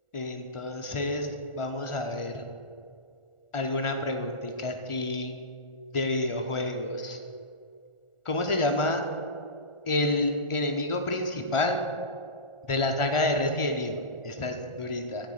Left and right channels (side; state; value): right; late; 1.4 ms